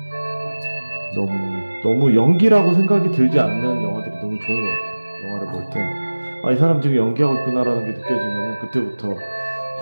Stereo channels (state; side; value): inverted; both; correlation -1.00